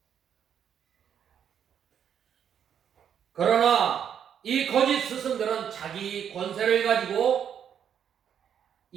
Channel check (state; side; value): quieter; left; 8.6 dB